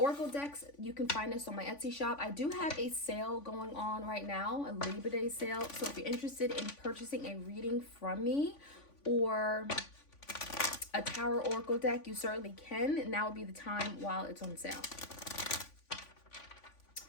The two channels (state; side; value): late; right; 3.5 ms